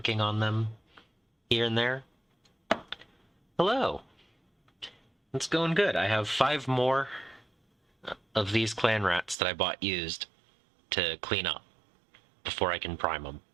on them here and there. Hello! It's going good. I have 5 more of these clan rats that I bought used to clean up before I can prime them.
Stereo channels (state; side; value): drops out; left; at 9.3 s